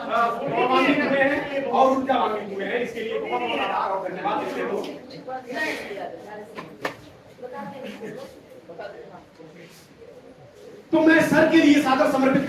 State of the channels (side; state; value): both; identical; correlation 1.00